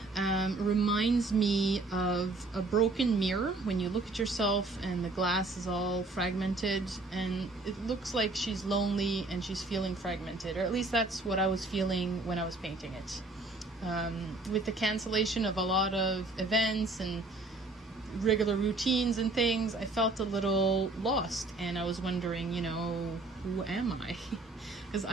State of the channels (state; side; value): quieter; left; 3.1 dB